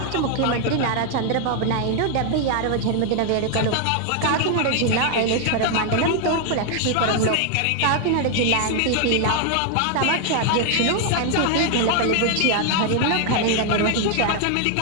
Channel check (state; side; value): different; both; correlation 0.00